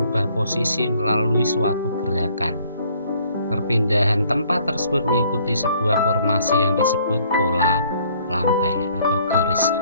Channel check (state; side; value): inverted; both; correlation -0.61